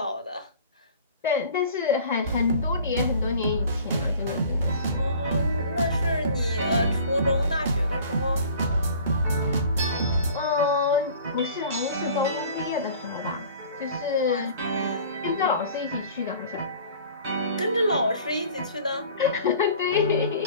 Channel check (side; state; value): both; inverted; correlation -0.46